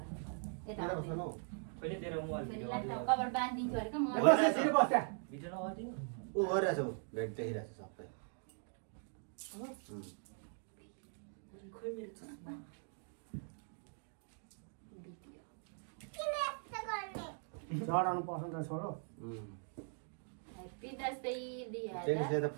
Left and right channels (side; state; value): left; silent; 50 dB below the other